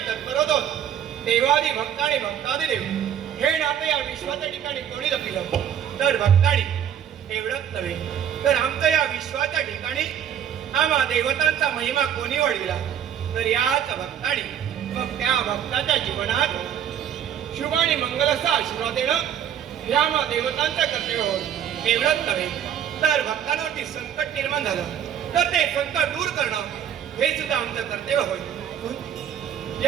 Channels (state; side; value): quieter; left; 9.3 dB